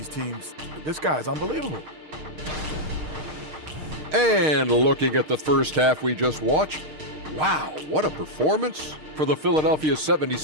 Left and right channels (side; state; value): left; late; 6.5 ms